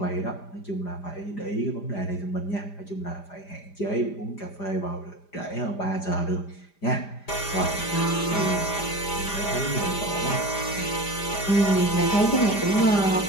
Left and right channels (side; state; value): right; late; 5.0 ms